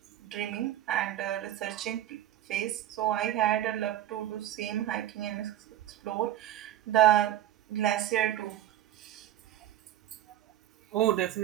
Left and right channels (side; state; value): left; quieter; 12.8 dB